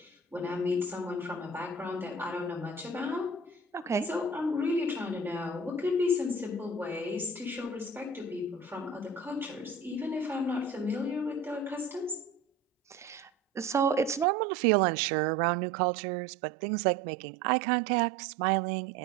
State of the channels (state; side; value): drops out; left; at 14.2 s